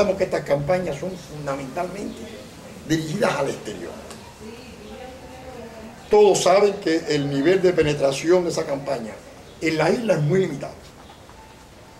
que estas campañas son fundamentalmente dirigidas al exterior. Todos saben que el nivel de penetración de esa campaña en la isla es muy limitado.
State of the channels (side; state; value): both; identical; correlation 1.00